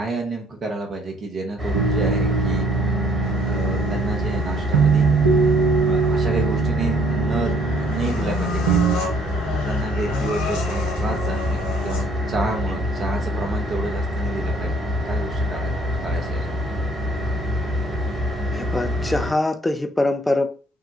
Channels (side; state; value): both; normal; correlation 0.62